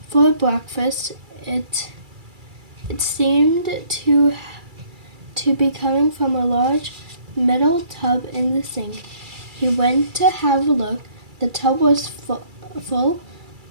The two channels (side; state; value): left; late; 2.3 ms